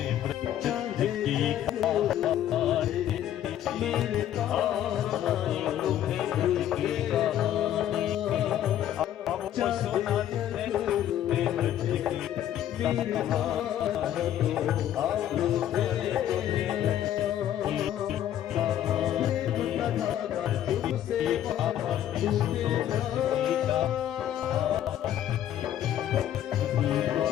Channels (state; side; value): quieter; right; 11.3 dB